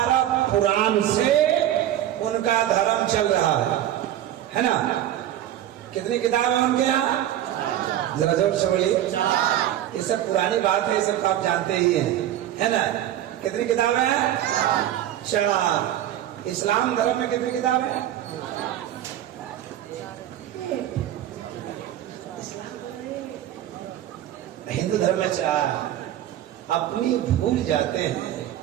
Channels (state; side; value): quieter; left; 12.2 dB